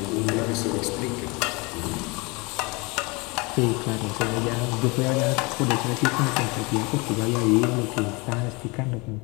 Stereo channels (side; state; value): right; quieter; 27.0 dB